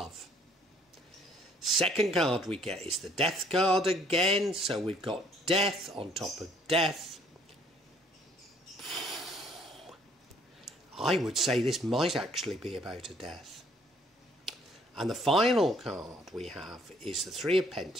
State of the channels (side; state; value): both; normal; correlation 0.61